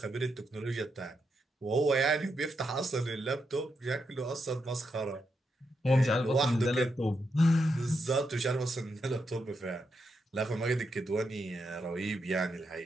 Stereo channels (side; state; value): both; normal; correlation 0.83